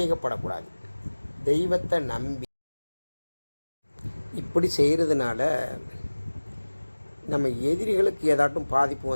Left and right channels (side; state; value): both; inverted; correlation -1.00